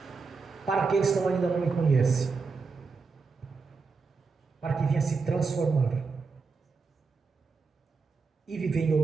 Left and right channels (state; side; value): quieter; left; 4.6 dB